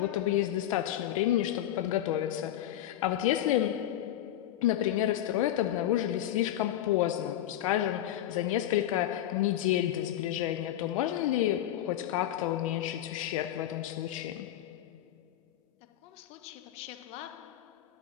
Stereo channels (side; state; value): right; quieter; 12.3 dB